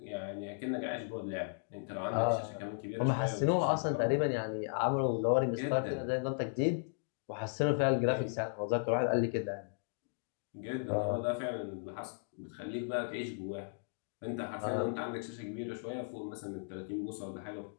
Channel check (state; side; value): silent; right; digital silence